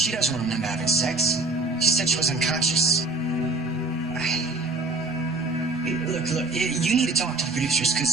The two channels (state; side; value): quieter; left; 3.2 dB